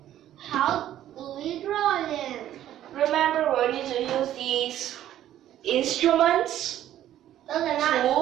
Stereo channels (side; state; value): left; quieter; 12.2 dB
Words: How do we draw them? Remember, we need to use these instruments, Those are not.